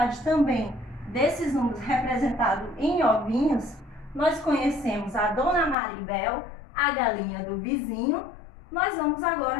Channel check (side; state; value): right; drops out; at 5.8 s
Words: também desses números representados em ovinhos, nós conhecemos a Dona Maribel, a galinha do vizinho. Nós vamos agora